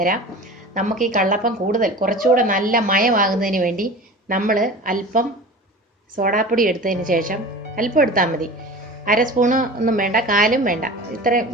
തരാം. നമുക്ക് ഈ കള്ളപ്പം കുറച്ചുകൂടെ നല്ല മയമാകുന്നതിന് വേണ്ടി നമ്മൾ അല്പം സോഡാപ്പൊടി എടുത്തതിന് ശേഷം, അല്പം എടുത്താൽ മതി, 1/2 സ്പൂണ് ഒന്നും വേണ്ട, 1/4 വേണ്ട, ഇത്രയും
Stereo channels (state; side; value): normal; both; correlation 0.36